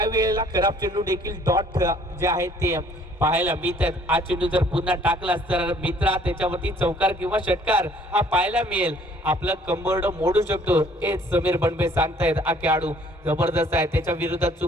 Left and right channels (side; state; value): both; normal; correlation 0.58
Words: वेळेला खराब चेंडू देखील डॉट जे आहेत ते पाहायला मिळतात. हा चेंडू जर पुन्हा टाकलास तर मित्रा त्याच्यावरती चौकार किंवा षटकार हा पाहायला मिळेल. आपलं कंबरड मोडू शकतो हे समीर बनबे सांगतायत. हा खेळाडू जबरदस्त आहे. त्याच्या विरोधात